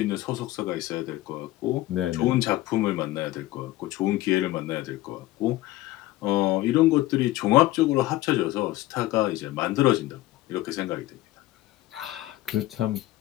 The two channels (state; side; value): quieter; right; 17.0 dB